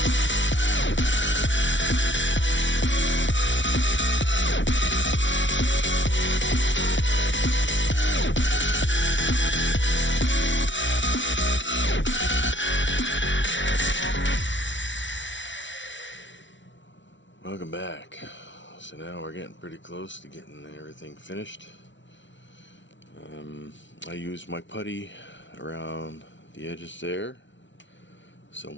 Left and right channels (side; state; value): right; late; 0.55 ms